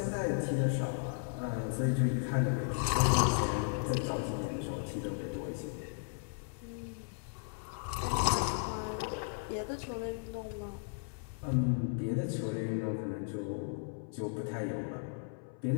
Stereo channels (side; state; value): right; silent; 54 dB below the other